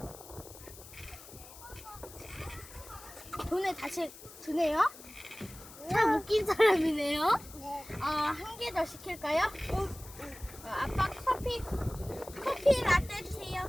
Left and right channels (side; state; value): left; noise; hiss, 17 dB below the sound